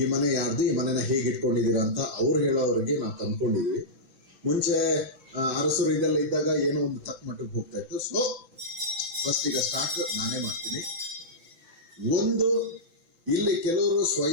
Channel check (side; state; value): left; late; 6.0 ms